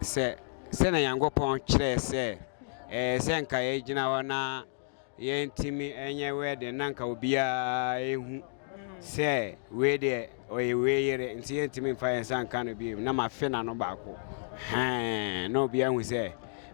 na Yankopon kire se se nka ye gina wana yentimi enye WED nanka obia ehu se WED oye weyere nti yentimi fa yensan kan bi na ma fe na no baako no obia hu se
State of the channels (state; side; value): silent; right; digital silence